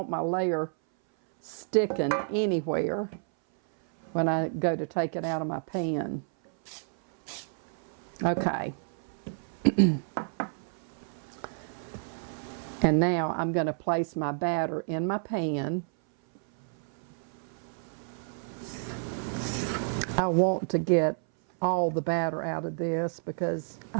my layer sticking anywhere when I go to take it out of my pan. Okay. And now I'm going to place my batter in my pan. I want to get all the batter out of this because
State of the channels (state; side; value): silent; left; 58 dB below the other